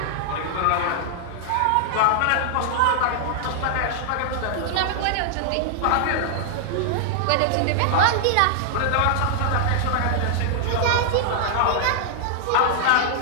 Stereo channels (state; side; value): different; both; correlation -0.01